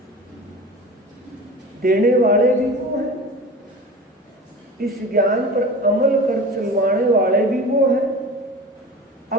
देने वाले भी वो हैं, इस ज्ञान पर अमल कर चलवाने वाले भी वो हैं।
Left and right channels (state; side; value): normal; both; correlation 0.35